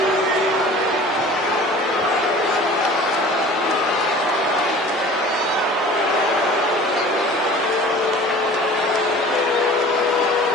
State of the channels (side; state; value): both; normal; correlation 0.43